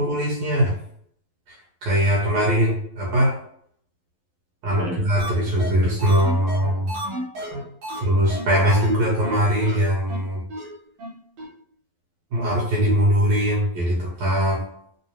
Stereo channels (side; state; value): left; late; 11 ms